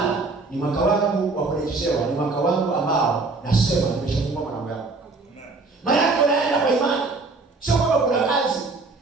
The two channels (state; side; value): quieter; left; 3.7 dB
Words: ni mwaka wangu wa kurejeshewa, ni mwaka wangu ambao nasema nimeshafungua malango yangu. Maana yako naenda kwa imani. Sio kwamba kuna kazi.